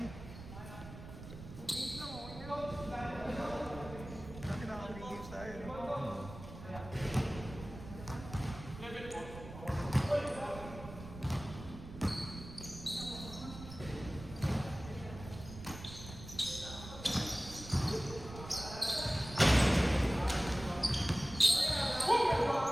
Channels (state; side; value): noise; right; rumble, 13 dB below the sound